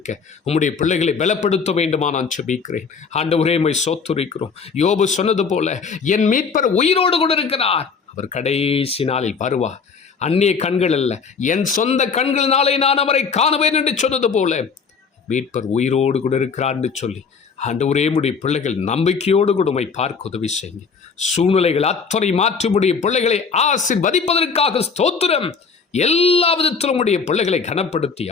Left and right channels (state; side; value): quieter; right; 5.5 dB